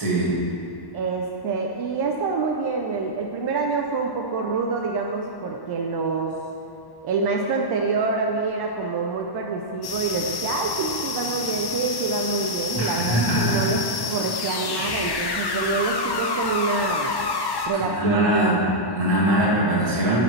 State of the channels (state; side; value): late; right; 1.1 ms